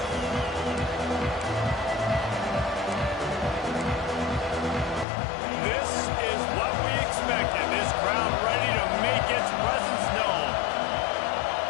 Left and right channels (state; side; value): drops out; right; at 5.1 s